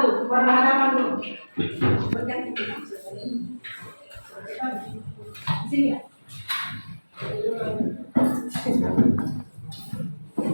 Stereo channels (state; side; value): inverted; both; correlation -1.00